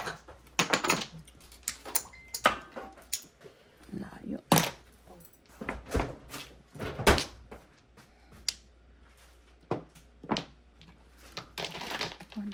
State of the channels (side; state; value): both; identical; correlation 1.00